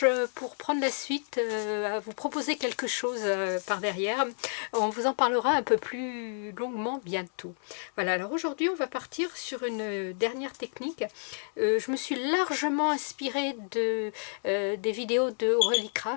pour prendre la suite à vous proposer quelque chose par derrière. On vous en parlera un peu plus longuement bientôt. Voilà, alors aujourd'hui on va partir sur une dernière technique. Je me suis largement inspirée des vidéos de Aurélie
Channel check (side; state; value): right; silent; digital silence